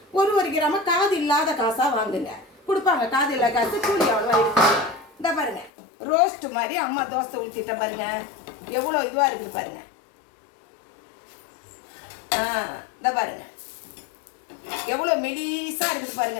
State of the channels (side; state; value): right; drops out; at 5.7 s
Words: ஒரு கிராம காது இல்லாத காசாக வாங்குங்க. கொடுப்பாங்க காது இல்லாத காசு, கூலி அவ்வளோவா இருக்குது. இந்த பாருங்கள், ரோஸ்ட் மாதிரி அம்மா தோசை ஊற்றிட்ட பாருங்க, எவ்வளோ இதுவாக இருக்குது பாருங்க. இந்த பாருங்க, எவ்வளோ மெலிசாக இருக்குது பாருங்க